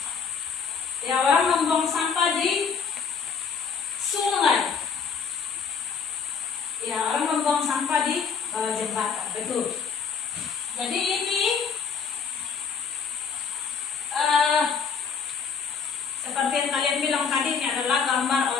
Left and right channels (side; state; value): right; quieter; 6.1 dB